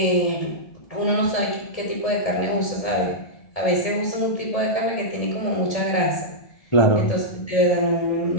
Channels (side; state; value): right; late; 1.7 ms